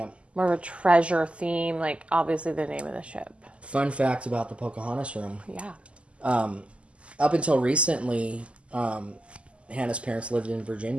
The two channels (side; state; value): left; late; 0.056 ms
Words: More of a treasure theme, obviously the name of the ship. Fun fact about the Pocahontas room. Yeah. Up until recently, Hannah's parents lived in